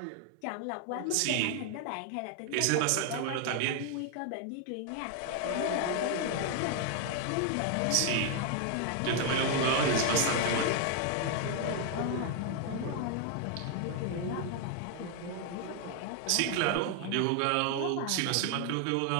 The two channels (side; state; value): both; different; correlation 0.00